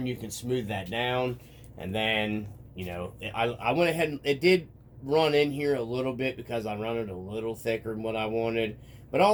you can smooth that down. And then, you know, I went ahead and it did run in here a little bit because I run it a little thicker than what I wanted. But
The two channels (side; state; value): both; identical; correlation 1.00